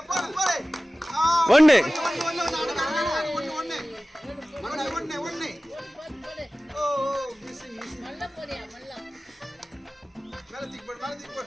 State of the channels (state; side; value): normal; both; correlation 0.97